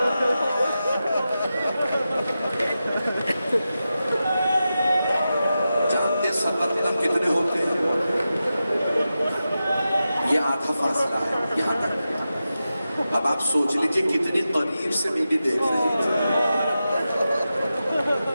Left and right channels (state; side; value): inverted; both; correlation -0.92